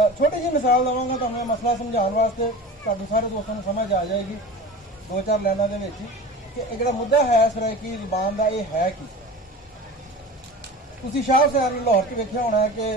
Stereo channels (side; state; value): both; normal; correlation 0.34